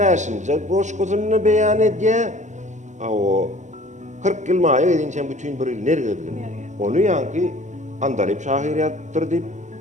goşgusyny beýan edýär. 40 ýyl maýa edinçen bütün bir ýyl ner gezgin. Onu ýanky Andalyp şahyriýatdyr diýip,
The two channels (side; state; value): left; late; 0.34 ms